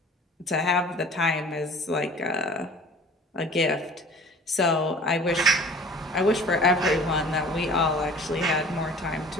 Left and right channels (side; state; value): both; normal; correlation 0.45